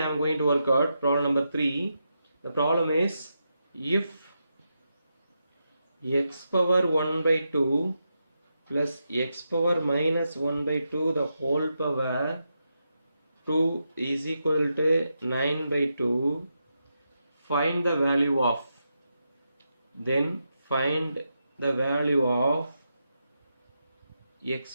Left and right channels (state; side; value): inverted; both; correlation -0.86